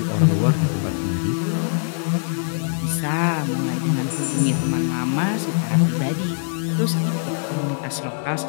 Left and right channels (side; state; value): right; silent; digital silence